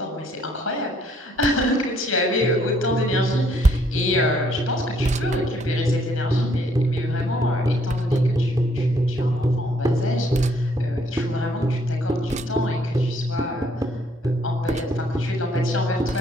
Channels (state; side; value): normal; both; correlation 0.66